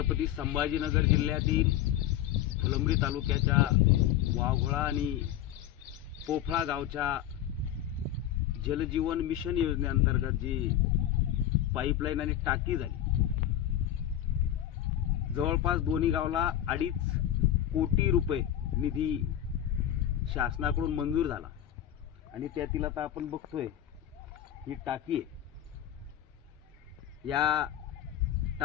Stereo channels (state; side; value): quieter; right; 11.5 dB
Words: संभाजीनगर जिल्ह्यातील फुलंब्री तालुक्याच्या वाघोळा आणि पोफळा गावच्या जलजीवन मिशन योजनेअंतर्गत जी पाईपलाईन आणि टाकी झाली, जवळपास दोन्ही गावला 2.5 कोटी रुपये निधी शासनाकडून मंजूर झाला आणि त्यातील आता आपण बघतोय ही टाकी आहे। या